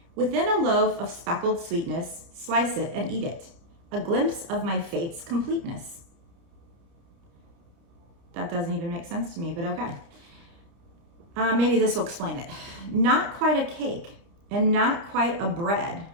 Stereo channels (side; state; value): left; late; 30 ms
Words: Within a loaf of speckled sweetness, slice it and eat it. A glimpse of my fate's completeness. That doesn't even make sense to me, but okay. Maybe this will explain it. Not quite a cake and not quite a bread.